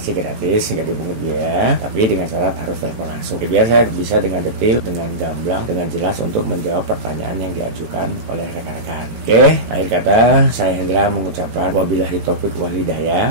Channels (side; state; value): left; late; 18 ms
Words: gratis, nggak dipungut biaya, tapi dengan syarat harus telepon langsung. Biar saya bisa dengan detail, dengan gamblang, dengan jelas untuk menjawab pertanyaan yang diajukan oleh rekan-rekan. Oke, akhir kata saya Hendra mengucapkan wabillahi taufik wal